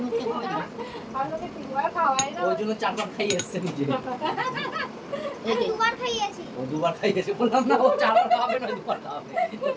মুখে হবে না। আমি ওকে তিনবার খাওয়াই না, ওই জন্য চারবার খাইয়ে এসছে নিজে। এই দুবার খাইয়েছি। ও দুবার খাইয়েছে, বললাম না ও চারবার খাবে না দুবার খাবে, ও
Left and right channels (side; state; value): both; identical; correlation 1.00